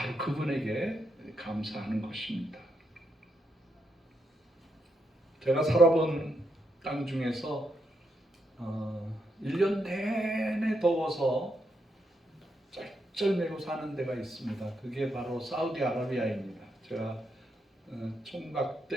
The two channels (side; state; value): both; normal; correlation 0.80